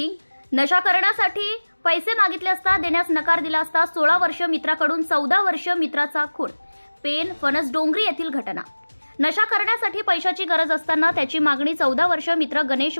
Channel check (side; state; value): both; inverted; correlation -1.00